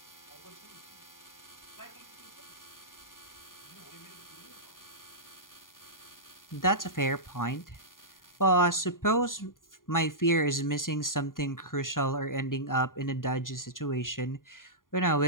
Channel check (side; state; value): right; late; 0.90 ms